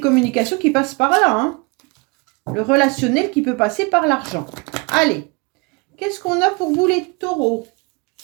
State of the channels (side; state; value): left; quieter; 29.1 dB